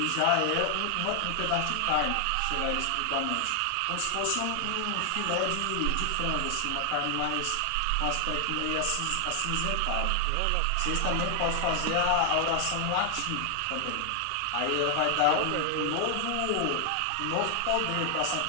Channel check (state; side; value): different; both; correlation 0.00